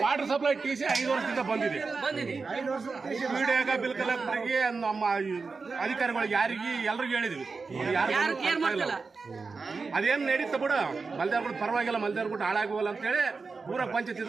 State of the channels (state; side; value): quieter; left; 4.5 dB